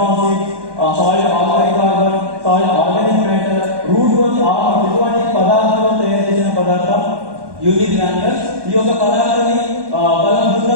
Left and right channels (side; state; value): left; late; 1.1 ms